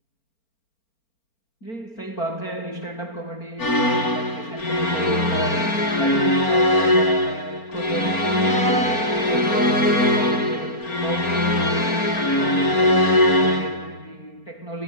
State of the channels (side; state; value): right; late; 4.4 ms